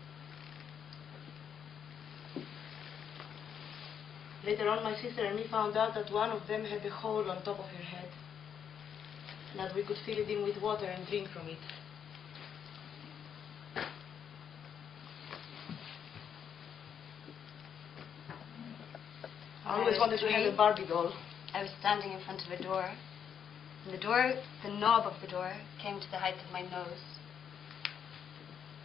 Later on, my sister and me found out that one of them had a hole on top of her head, and that we could fill it in with water and drink from it. I always wanted to have a Barbie doll. I was standing in front of a door, and the knob of the door came to the height of my nose.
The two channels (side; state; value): right; quieter; 8.1 dB